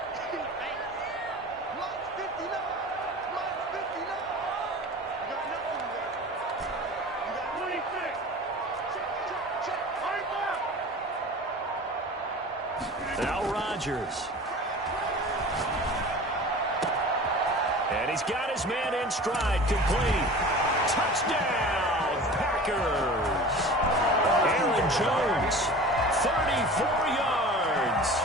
Now Rodgers. And he's got his man in stride, complete. Touchdown, Packers. Aaron Jones, 34 yards.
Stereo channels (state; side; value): normal; both; correlation 0.38